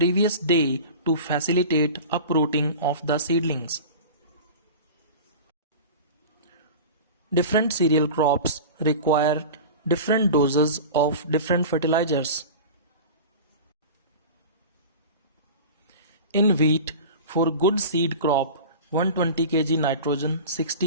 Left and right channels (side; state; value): both; inverted; correlation -0.34